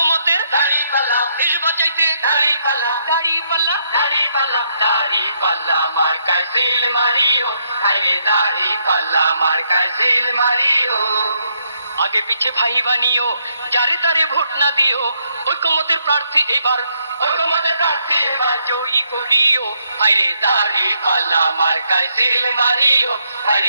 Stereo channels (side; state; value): both; inverted; correlation -0.74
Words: দাড়িপাল্লা, দেশ বাঁচাইতে দাড়িপাল্লা, দাড়িপাল্লা, দাড়িপাল্লা, দাড়িপাল্লা মার্কায় সিল মারিও, আরে দাড়িপাল্লা মার্কায় সিল মারিও। আগে পিছে ভাই বানিও, যারে তারে ভোট না দিও, ঐক্যমতের প্রার্থী এবার, ঐক্যমতের প্রার্থী এবার জয়ী করিও, আরে দাড়িপাল্লা মার্কায় সিল মারিও,